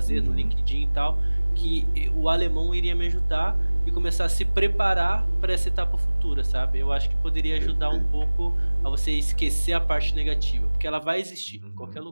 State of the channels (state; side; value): inverted; both; correlation -1.00